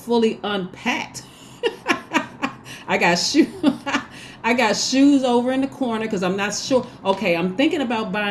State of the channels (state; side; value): identical; both; correlation 1.00